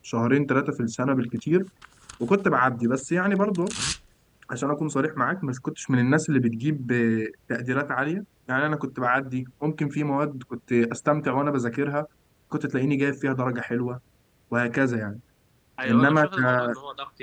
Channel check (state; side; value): identical; both; correlation 1.00